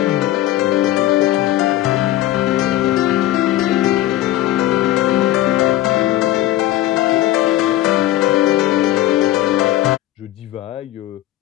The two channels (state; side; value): quieter; right; 14.5 dB